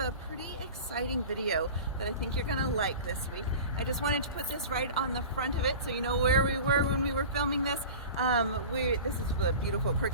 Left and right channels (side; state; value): both; inverted; correlation -0.36